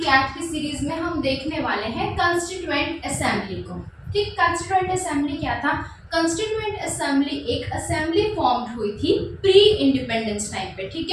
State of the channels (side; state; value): both; identical; correlation 1.00